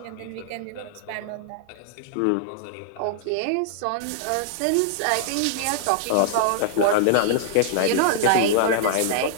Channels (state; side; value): different; both; correlation -0.01